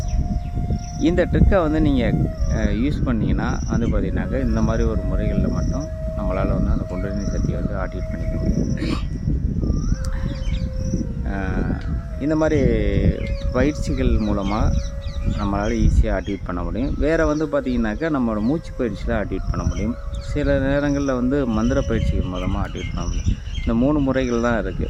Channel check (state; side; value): identical; both; correlation 1.00